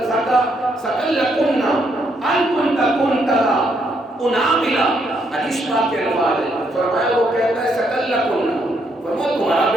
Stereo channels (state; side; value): normal; both; correlation 0.74